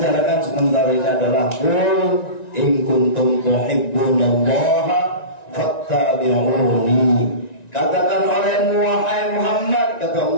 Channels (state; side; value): late; right; 1.9 ms